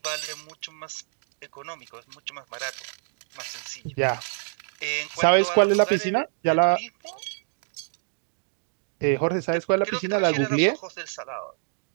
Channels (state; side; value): silent; left; digital silence